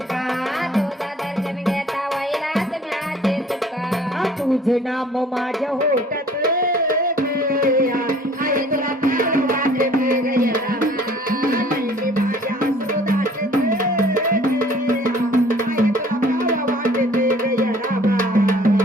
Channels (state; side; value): normal; both; correlation 0.54